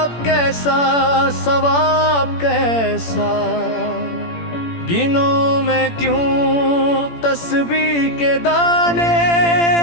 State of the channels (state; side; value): late; right; 17 ms